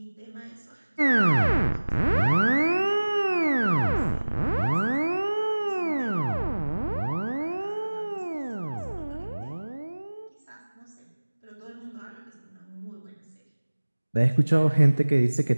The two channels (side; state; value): both; inverted; correlation -1.00